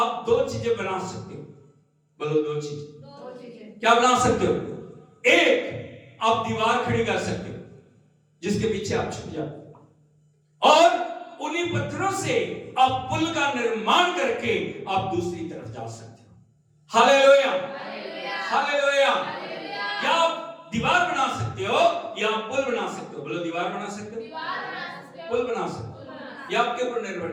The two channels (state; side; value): identical; both; correlation 1.00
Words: दो चीजें बना सकते हो। बोलो दो चीजें। क्या बना सकते हो? एक, आप दीवार खड़ी कर सकते हो जिसके पीछे आप छुप जाओ, और उन्हीं पत्थरों से आप पुल का निर्माण करके आप दूसरी तरफ जा सकते हो। Hallelujah, hallelujah. या आप दीवार बना सकते हो या आप पुल बना सकते हो। बोलो दीवार बना सकते हो, पुल बना सकते हो, ये आपके ऊपर निर्भर